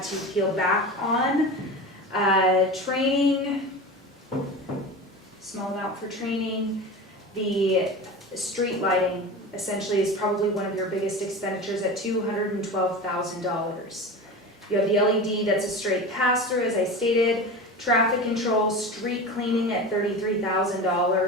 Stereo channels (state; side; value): normal; both; correlation 0.30